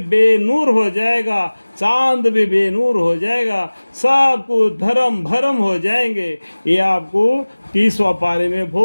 بے نور ہو جائے گا، چاند بھی بے نور ہو جائے گا، سب کو دھرم بھرم ہو جائیں گے۔ یہ آپ کو 30واں پارے میں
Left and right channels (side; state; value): both; inverted; correlation -1.00